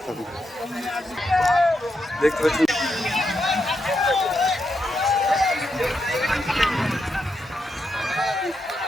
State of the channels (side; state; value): both; normal; correlation 0.83